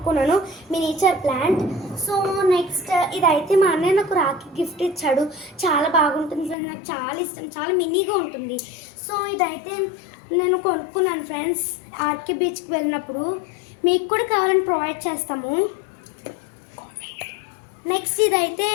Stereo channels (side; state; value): right; drops out; at 6.6 s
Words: మినిచర్ ప్లాంట్. సో నెక్స్ట్ ఇదైతే మా అన్నయ్య నాకు రాఖీ గిఫ్ట్ ఇచ్చాడు. చాలా బాగుంటుంది ఫ్రెండ్స్, నాకు చాలా ఇష్టం, చాలా మినీగా ఉంటుంది. సో ఇదైతే నేను కొనుక్కున్నాను ఫ్రెండ్స్ ఆర్కే బీచ్కి వెళ్ళినప్పుడు. మీకు కూడా కావాలని ప్రొవైడ్ చేస్తాము. నెక్స్ట్ ఇదైతే